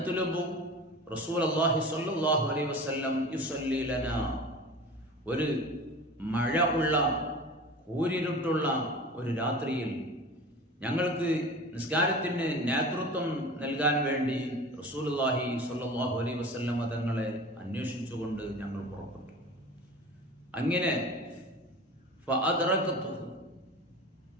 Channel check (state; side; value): normal; both; correlation 0.36